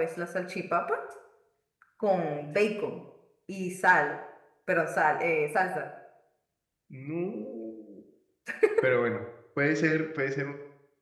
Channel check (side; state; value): both; identical; correlation 1.00